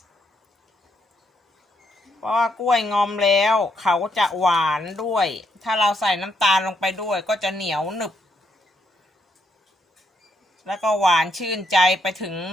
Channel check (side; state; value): both; normal; correlation 0.76